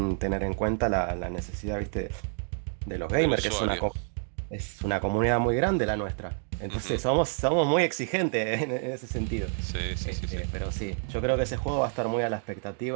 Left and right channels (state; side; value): silent; left; 59 dB below the other